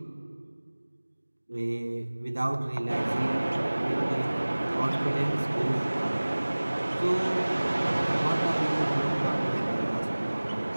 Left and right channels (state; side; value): inverted; both; correlation -1.00